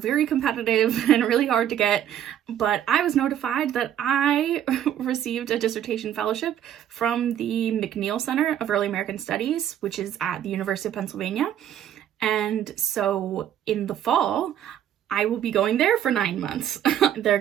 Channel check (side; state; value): left; quieter; 10.5 dB